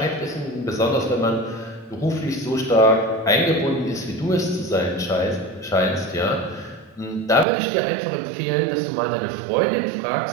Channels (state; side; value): drops out; left; at 7.5 s